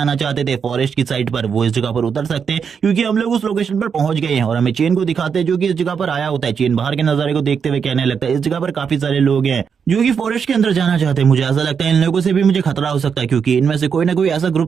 चाहते थे फॉरेस्ट की साइड पर, वो इस जगह पर उतर सकते हैं, क्योंकि हम लोग उस लोकेशन पर पहुंच गए हैं। और हमें चेन को दिखाते हैं, जो कि इस जगह पर आया होता है। चेन बाहर के नजारे को देखते हुए कहने लगता है, इस जगह पर काफी सारे लोग हैं जो कि फॉरेस्ट के अंदर जाना चाहते हैं। मुझे ऐसा लगता है इन लोगों से भी मुझे खतरा हो सकता है, क्योंकि इनमें से कोई ना कोई ऐसा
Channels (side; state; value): left; quieter; 6.6 dB